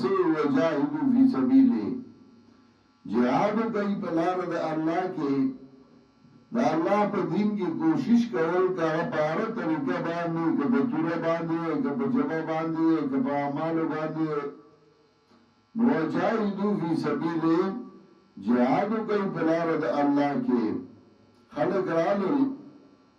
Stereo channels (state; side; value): identical; both; correlation 1.00